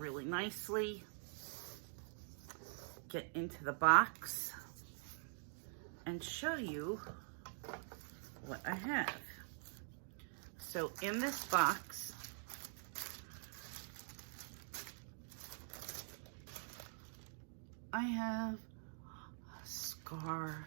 nicely. Get into the box and show you what I have. So in this box, I have a scarf.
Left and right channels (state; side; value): silent; left; digital silence